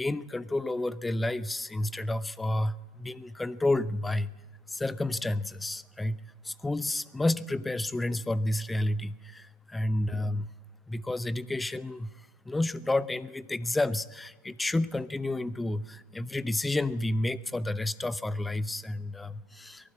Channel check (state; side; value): normal; both; correlation 0.94